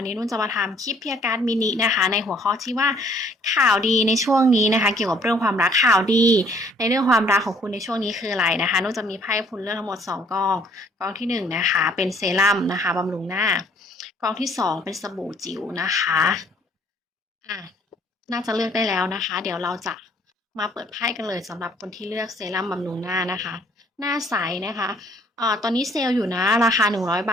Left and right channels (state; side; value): normal; both; correlation 0.61